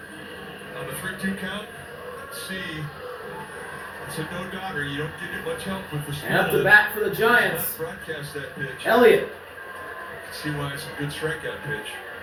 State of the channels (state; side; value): identical; both; correlation 1.00